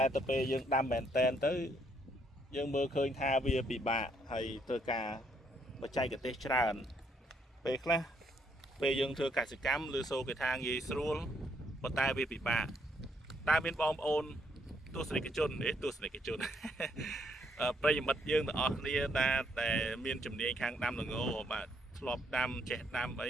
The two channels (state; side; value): normal; both; correlation 0.71